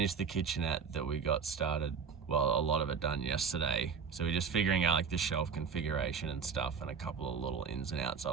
the kitchenette that we got started, well, a lot of it done yesterday. So we're just figuring out like the shelf configuration and stuff and a couple of little ins and outs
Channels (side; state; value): left; quieter; 6.2 dB